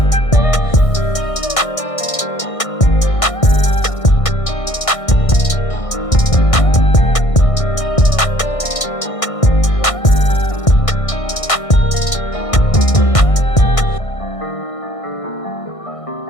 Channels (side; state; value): right; late; 1.6 ms